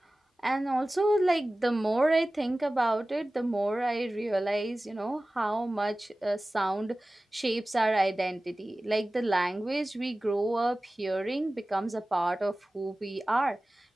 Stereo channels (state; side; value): normal; both; correlation 0.97